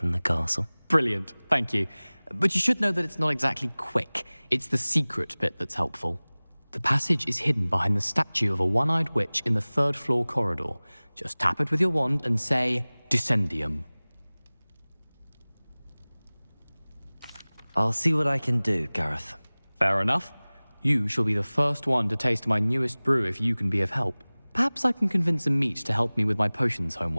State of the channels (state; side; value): inverted; both; correlation -1.00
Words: the castle. Brilliant, thank you. But you should know that it's not exactly quick. It's the secret bit that's helpful. The passage is hidden behind the statue of a one-eyed witch in the third-floor corridor. Just tap it with your wand and say, Descendium. I'll see what I can do, Gareth. Fair enough. You shall be the first one to taste my newest brew if you can be of help. Perhaps I can convince a meat to help me with my potions